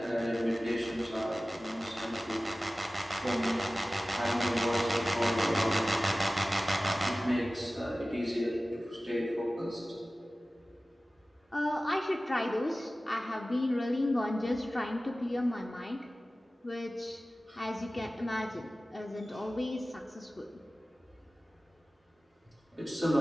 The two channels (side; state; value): both; normal; correlation 0.96